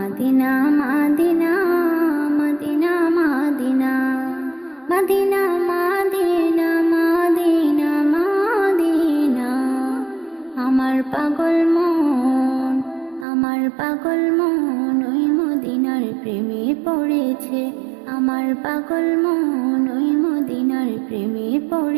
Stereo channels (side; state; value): left; drops out; at 13.2 s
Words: Medina Medina Medina Medina Medina Medina Medina আমার পাগল মন ওই মদিনার প্রেমে পড়েছে। আমার পাগল মন ওই মদিনার প্রেমে